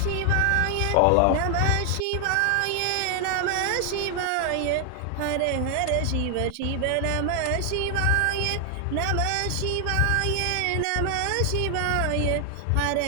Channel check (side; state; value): both; different; correlation 0.00